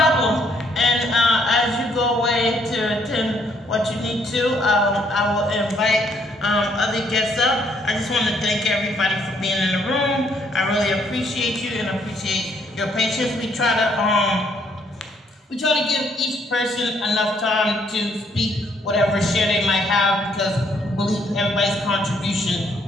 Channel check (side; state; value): both; normal; correlation 0.68